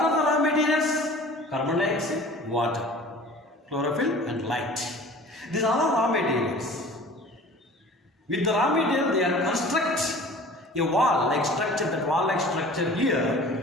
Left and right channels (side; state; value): both; normal; correlation 0.44